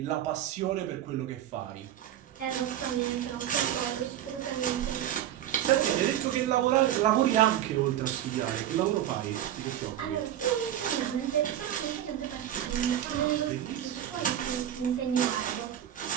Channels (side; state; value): left; quieter; 11.3 dB